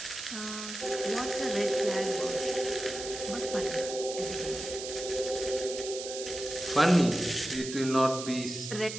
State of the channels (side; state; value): right; noise; hiss, 8 dB below the sound